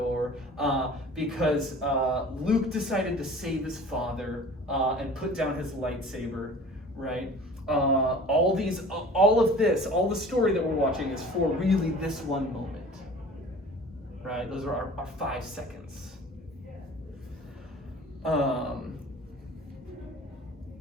because Luke decided to save his father and put down his lightsaber, right? All of this, all the story that we're watching is for really this one moment, right? Those are our 5 seconds.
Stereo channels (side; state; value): both; normal; correlation 0.43